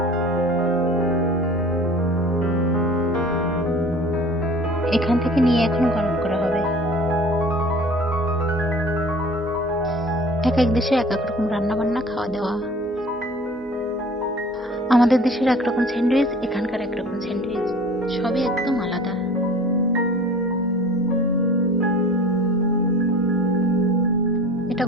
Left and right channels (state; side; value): normal; both; correlation 0.45